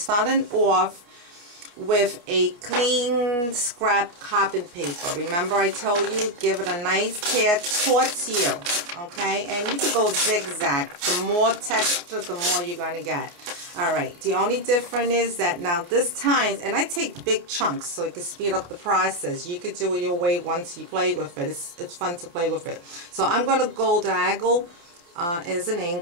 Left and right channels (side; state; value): left; late; 29 ms